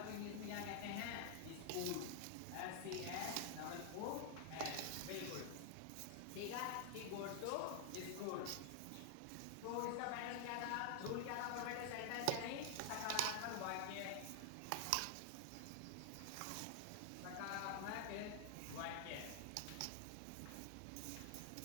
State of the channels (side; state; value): both; different; correlation 0.00